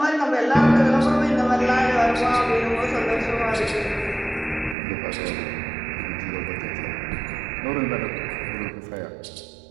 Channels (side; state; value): left; drops out; at 4.8 s